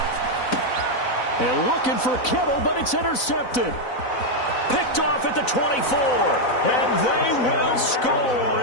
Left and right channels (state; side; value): late; right; 4.0 ms